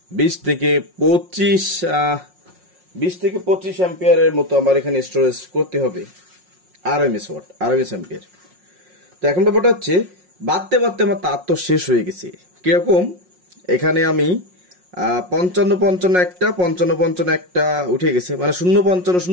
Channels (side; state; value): left; late; 5.5 ms